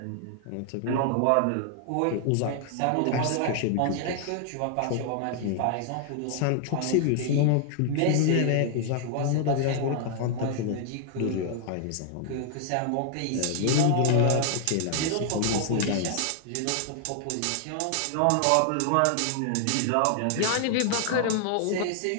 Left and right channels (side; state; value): both; different; correlation 0.00